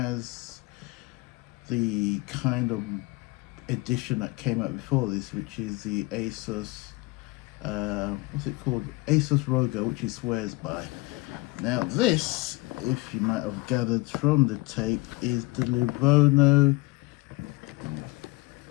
the kind of edition that came out before this, which is the Asus, what's it called? Asus Rogo, which he swears by. Now this, if you might have gathered from the tape, is the Lenovo,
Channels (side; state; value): right; quieter; 23.0 dB